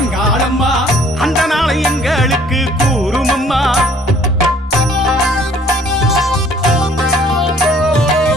அந்த நாளை எங்களுக்கு கூறுமம்மா.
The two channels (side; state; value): both; normal; correlation 0.58